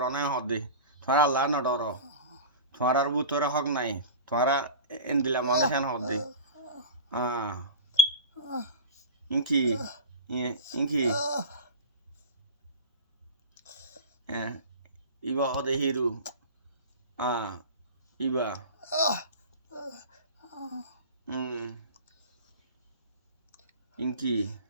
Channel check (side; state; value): both; inverted; correlation -0.33